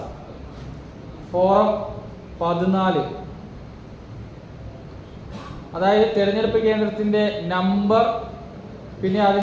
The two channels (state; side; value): identical; both; correlation 1.00